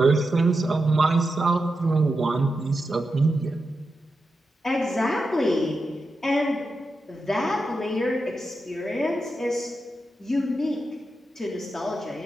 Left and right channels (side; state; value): both; normal; correlation 0.88